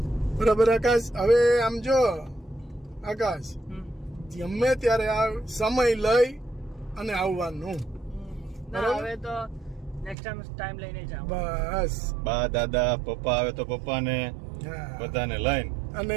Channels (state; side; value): drops out; left; at 10.2 s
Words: બરાબર આકાશ. હવે આમ જો આકાશ, ગમે ત્યારે આ સમય લઈ અને આવવાનું. ના, હવે તો નેક્સ્ટ ટાઈમ લઈને જાવ. બસ. બા દાદા પપ્પા આવે તો પપ્પાને હા. બધાને લઈને